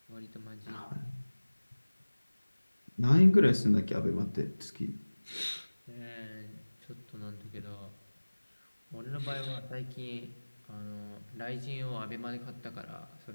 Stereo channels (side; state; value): both; inverted; correlation -1.00